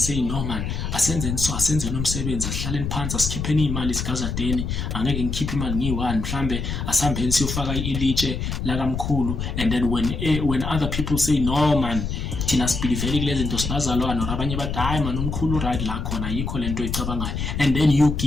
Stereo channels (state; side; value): noise; left; rumble, 3 dB below the sound